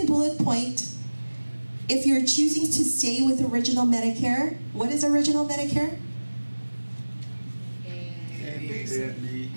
bullet point, if you're choosing to stay with original Medicare, what is original Medicare?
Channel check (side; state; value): both; inverted; correlation -1.00